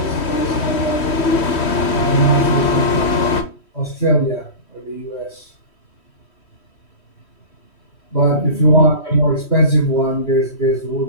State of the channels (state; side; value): late; right; 3.1 ms